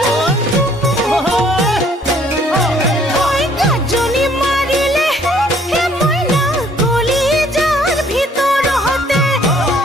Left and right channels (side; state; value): both; normal; correlation 0.61